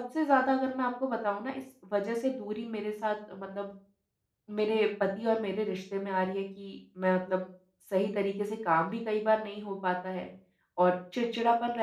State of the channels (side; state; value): both; identical; correlation 1.00